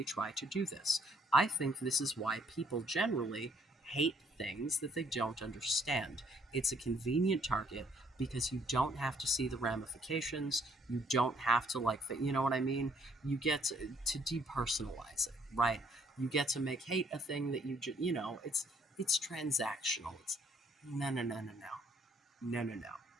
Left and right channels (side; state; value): both; normal; correlation 0.65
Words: try to do this. I think this is why people generally hate things that they don't understand. It's a convenient target because you don't have to see the ramifications. You don't have to, like, you know what I mean? You get to depersonalize it, right? You get to make hate a thing that you know, it's transactional. It's no, no, no, no, no. No, no, no.